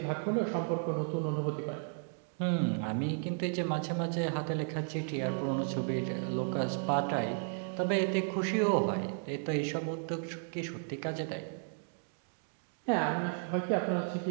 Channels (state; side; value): silent; left; 55 dB below the other